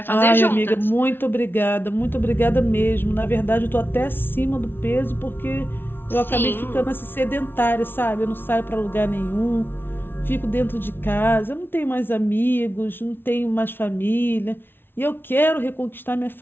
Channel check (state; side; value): late; right; 0.11 ms